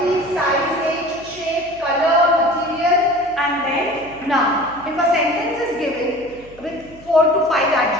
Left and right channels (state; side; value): noise; right; hum, 23 dB below the sound